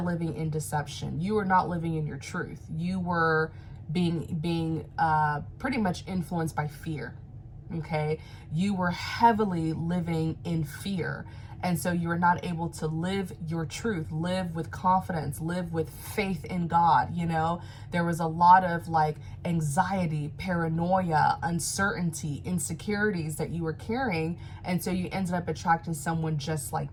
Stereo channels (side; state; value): both; identical; correlation 1.00